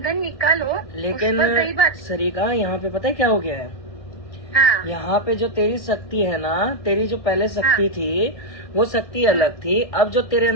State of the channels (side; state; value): right; late; 1.7 ms